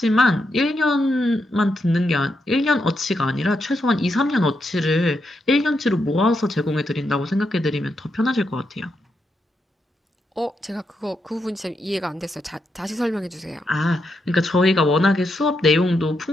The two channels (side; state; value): both; normal; correlation 0.83